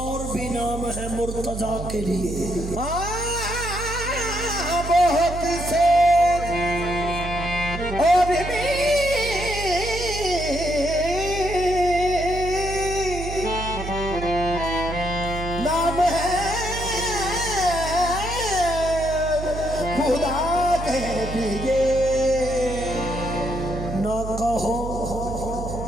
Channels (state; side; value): noise; right; hum, 7 dB below the sound